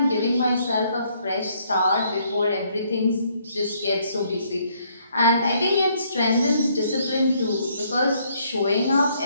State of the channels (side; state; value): both; inverted; correlation -0.68